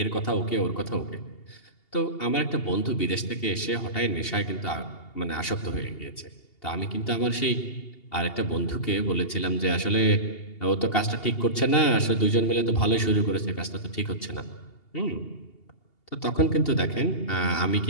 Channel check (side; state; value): right; late; 2.8 ms